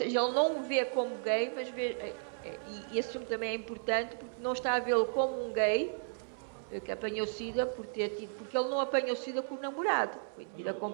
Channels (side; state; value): left; silent; digital silence